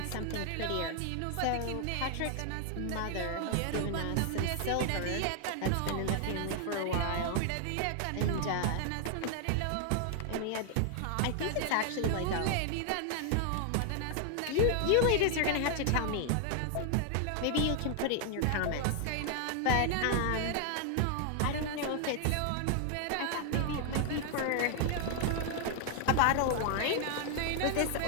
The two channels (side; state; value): both; different; correlation 0.00